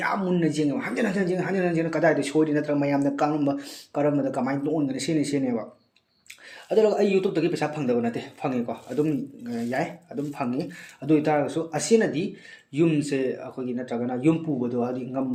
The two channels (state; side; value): identical; both; correlation 1.00